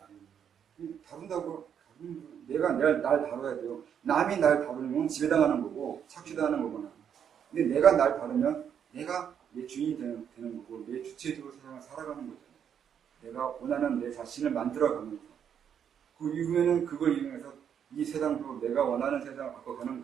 다룬다고 내가 날 다뤄야 돼요. 남이 날 다루면 지배당하는 거고 착취당하는 거구나. 근데 내가 날 다루면 내가 내 주인이 되는 거고 내 주체적으로 세상을 살아가는 거잖아요. 내가 원하는 내 자신을 만들어가면서 그 이후에는 그걸 이용해서 이 세상으로 내가 원하는 세상을 바꿔가는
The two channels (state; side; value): quieter; left; 8.3 dB